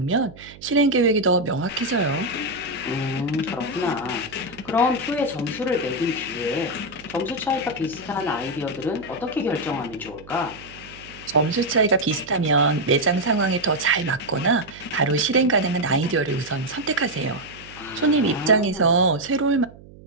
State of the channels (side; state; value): right; noise; hum, 20 dB below the sound